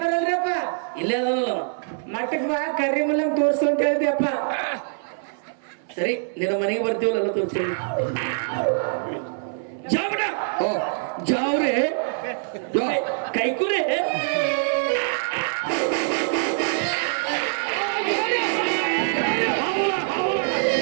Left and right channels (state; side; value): silent; left; 60 dB below the other